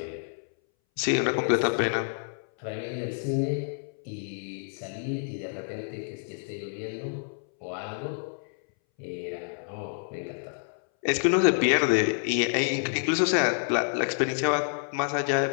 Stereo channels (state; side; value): silent; right; 59 dB below the other